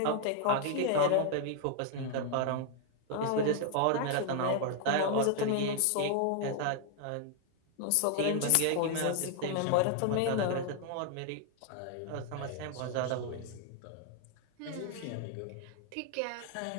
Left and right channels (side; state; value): both; different; correlation 0.00